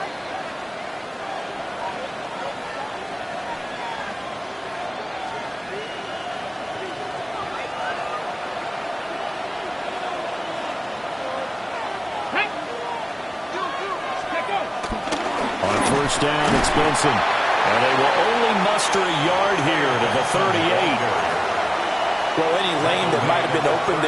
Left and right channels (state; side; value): identical; both; correlation 1.00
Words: Down, it's Benson. And they will only muster a yard here to the 38. Well, any lane that might have been open